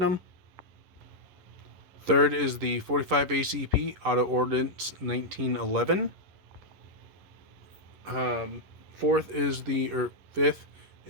Third is the 45 ACP Auto Ordnance 1911. Fifth is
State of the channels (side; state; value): left; late; 11 ms